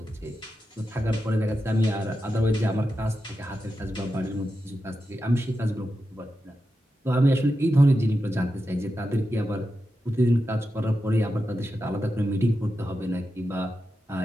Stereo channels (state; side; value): normal; both; correlation 0.89